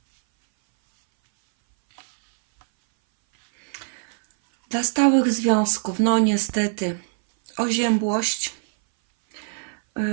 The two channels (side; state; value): left; silent; 61 dB below the other